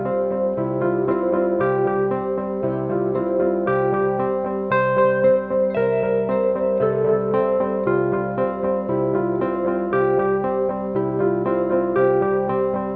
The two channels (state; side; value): identical; both; correlation 1.00